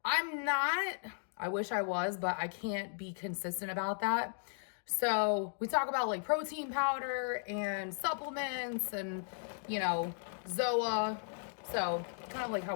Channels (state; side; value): silent; right; digital silence